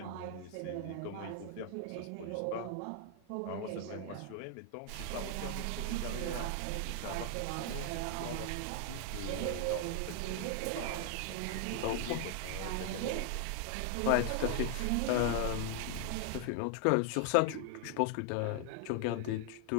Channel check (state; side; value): different; both; correlation 0.00